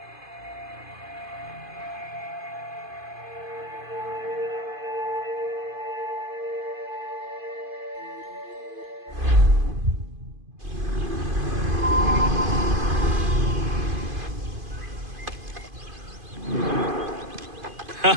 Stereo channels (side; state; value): left; late; 2.5 ms